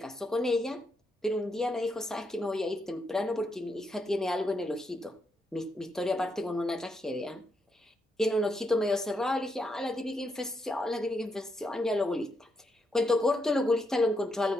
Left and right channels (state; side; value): normal; both; correlation 0.80